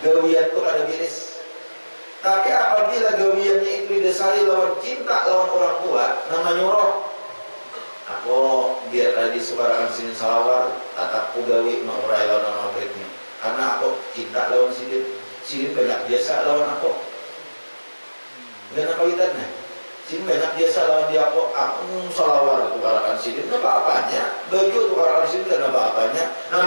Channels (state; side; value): inverted; both; correlation -1.00